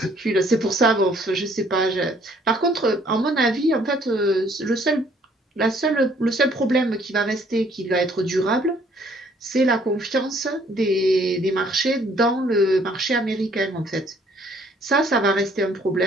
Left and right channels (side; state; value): both; normal; correlation 0.62